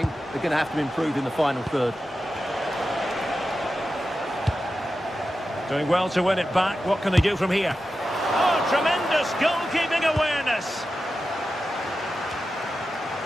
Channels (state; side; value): normal; both; correlation 0.91